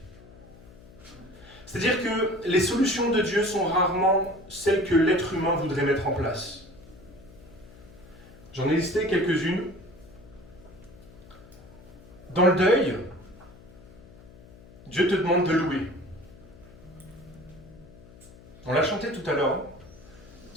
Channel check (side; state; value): left; noise; hum, 21 dB below the sound